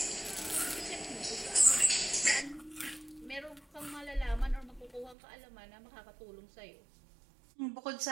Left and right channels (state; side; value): drops out; left; at 5.2 s